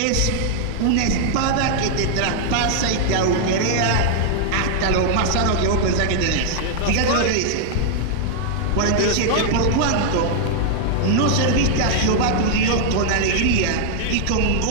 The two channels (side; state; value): both; different; correlation -0.01